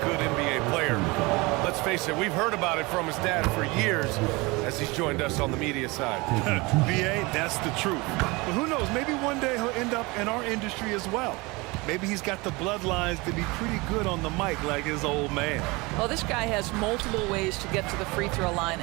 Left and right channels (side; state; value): left; quieter; 24.7 dB